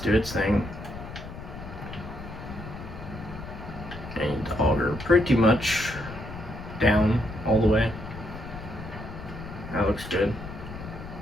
do its thing. And the auger pretty much down all the way. That looks good.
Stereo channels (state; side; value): noise; left; rumble, 11 dB below the sound